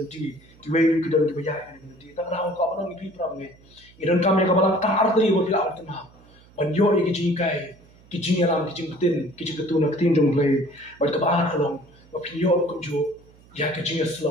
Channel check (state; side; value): noise; right; hum, 27 dB below the sound